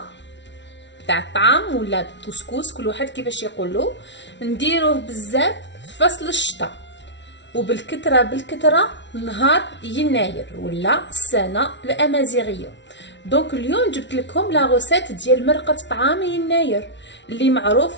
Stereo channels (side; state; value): right; late; 0.52 ms